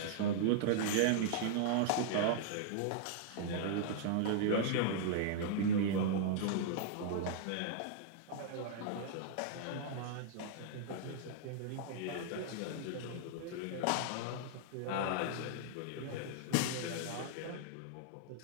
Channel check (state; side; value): different; both; correlation -0.01